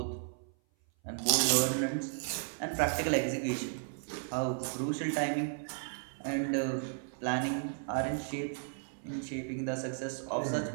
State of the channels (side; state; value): left; silent; 55 dB below the other